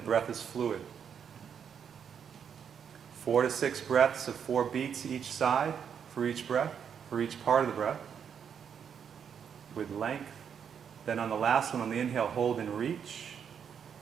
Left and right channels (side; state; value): left; quieter; 7.7 dB